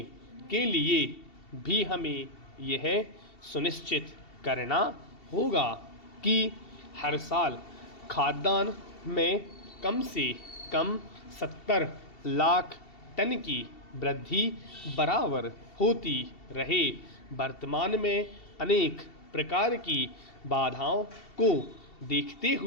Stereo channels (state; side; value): late; right; 2.7 ms